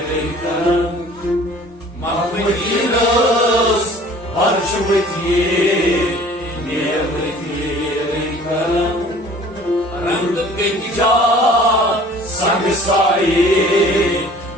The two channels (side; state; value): both; normal; correlation 0.49